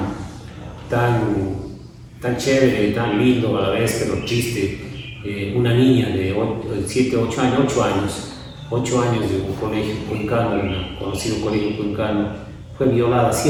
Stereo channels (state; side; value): identical; both; correlation 1.00